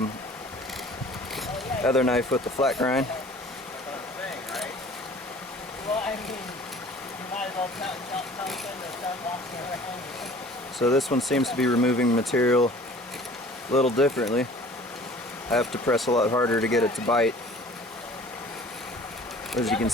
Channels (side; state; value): both; normal; correlation 0.48